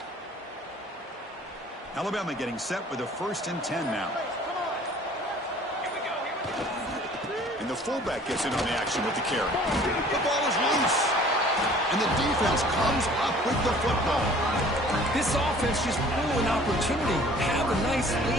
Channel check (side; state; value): both; normal; correlation 0.51